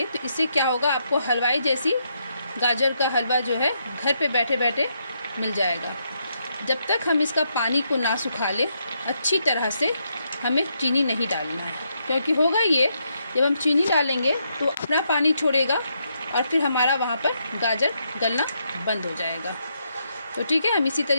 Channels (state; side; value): inverted; both; correlation -0.78